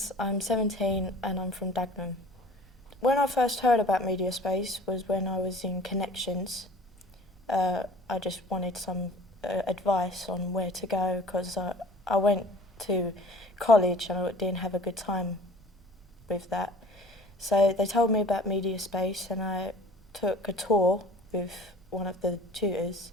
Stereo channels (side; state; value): both; normal; correlation 0.47